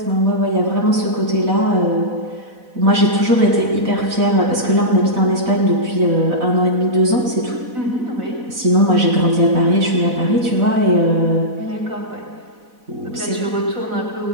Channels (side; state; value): left; late; 4.0 ms